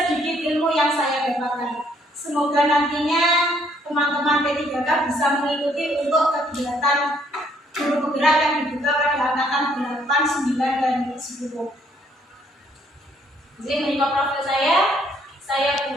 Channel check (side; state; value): both; normal; correlation 0.66